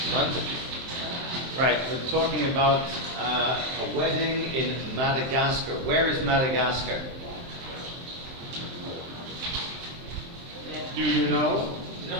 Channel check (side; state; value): left; late; 23 ms